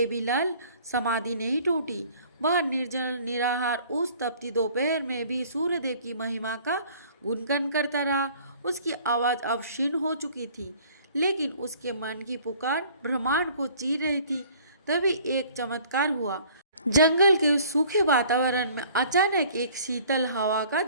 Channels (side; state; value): both; inverted; correlation -0.53